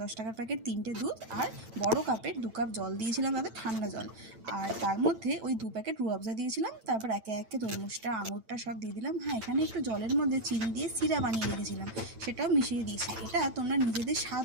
১০ টাকার প্যাকেট ৩টে দুধ আর বড় কাপের ২ কাপ জল দিয়েছিলাম, তাতে ঠান্ডা জল। আর তার মধ্যে ওই ২ প্যাকেট রুহ আফজা দিয়েছিলাম। তারপর একে একে তরমুজটা, আঙুরটা সব দিয়ে দিলাম। হ্যাঁ, এখানে একটু জলের মধ্যে চিনি দিয়ে সিরা বানিয়ে রেখেছিলাম, সেটাও মিশিয়ে দিয়েছি। এটা তোমরা নিজেদের স্বাদ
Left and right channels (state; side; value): late; left; 9.0 ms